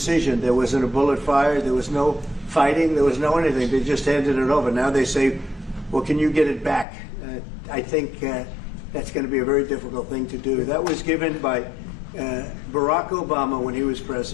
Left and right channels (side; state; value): right; drops out; at 6.9 s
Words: There wasn't a bullet fired. There was no fighting. There was no anything. They just handed it over. Now they say, well, can you get it back? I think that's going to be a very difficult thing to do. That was given by Barack Obama when he was